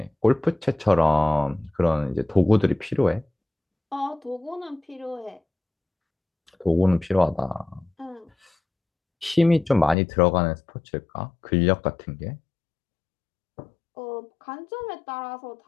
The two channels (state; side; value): drops out; right; at 10.0 s